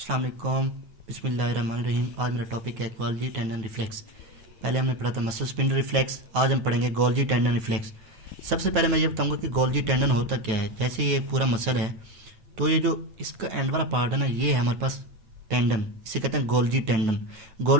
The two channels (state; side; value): late; left; 9.3 ms